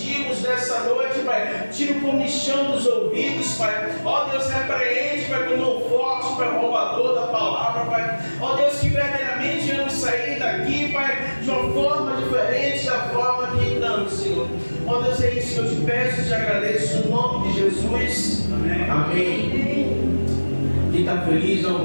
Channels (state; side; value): inverted; both; correlation -1.00